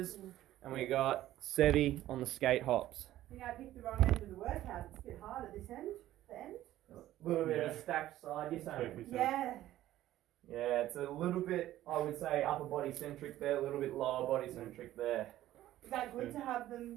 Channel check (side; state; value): left; quieter; 14.0 dB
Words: And we got Sevi on the skate hops. I think I picked the wrong end of the workout. It's a bit hard at this end. The end. A little bit of a stacked side, you're saying? Perfect. Yeah. Yeah, it's a little bit, I would say, upper body centric there, a little bit lower body centric there. Is that good to have